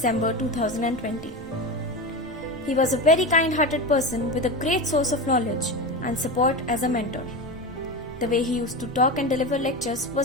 2020. He was a very kind-hearted person with a great source of knowledge and support as a mentor. The way he used to talk and deliver lectures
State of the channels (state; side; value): normal; both; correlation 0.22